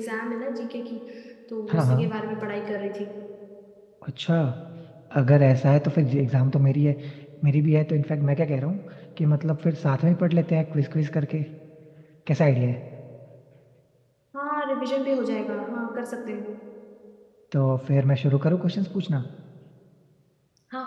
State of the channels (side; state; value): both; identical; correlation 1.00